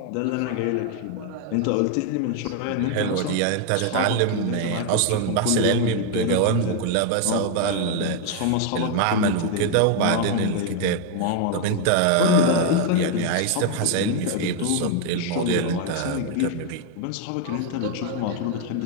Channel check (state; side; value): different; both; correlation 0.00